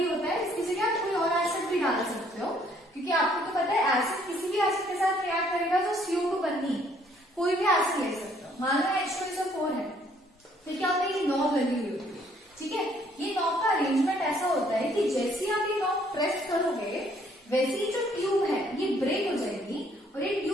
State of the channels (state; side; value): normal; both; correlation 0.64